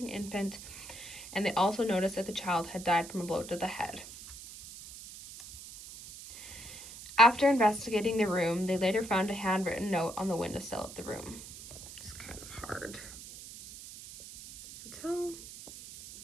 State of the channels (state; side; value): noise; right; hiss, 14 dB below the sound